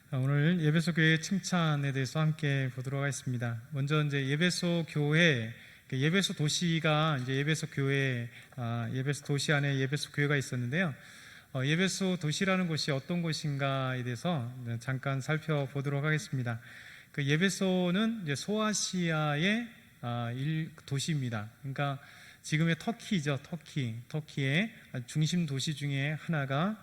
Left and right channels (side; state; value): both; identical; correlation 1.00